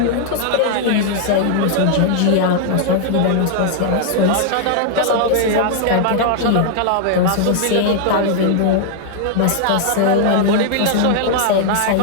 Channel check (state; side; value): different; both; correlation 0.00